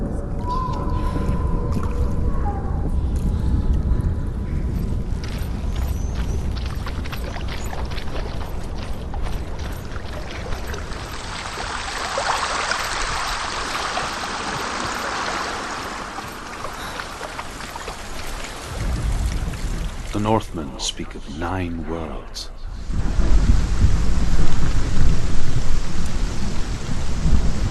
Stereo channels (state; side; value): identical; both; correlation 1.00